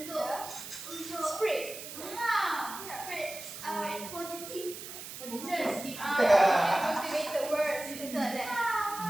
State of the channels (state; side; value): noise; right; hiss, 11 dB below the sound